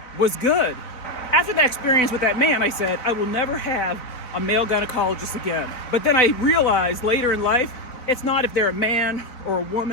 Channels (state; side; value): late; right; 4.0 ms